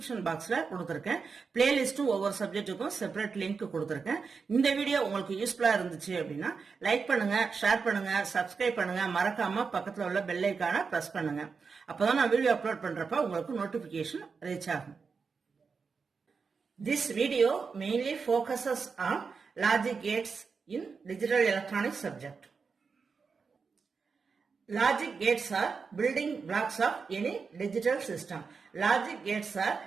பாக்ஸ்ல கொடுத்துருக்கேன். பிளேலிஸ்டும் ஒவ்வொரு சப்ஜெக்ட்டுக்கும் செப்பரேட் லிங்க் கொடுத்துருக்கேன். இந்த வீடியோ உங்களுக்கு யூஸ்ஃபுல்லா இருந்துச்சு அப்படின்னா லைக் பண்ணுங்க, ஷேர் பண்ணுங்க, சப்ஸ்கிரைப் பண்ணுங்க, மறக்காம பக்கத்துல உள்ள பெல் ஐகானை பிரஸ் பண்ணுங்க. அப்பதான் நான் வீடியோ அப்லோட் பண்றப்ப உங்களுக்கு நோட்டிபிகேஷன் ரீச் ஆகும். This video mainly focuses on logic gates in digital electronics subject. Logic gates are building blocks of any digital system. Logic gates are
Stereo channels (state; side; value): quieter; left; 5.2 dB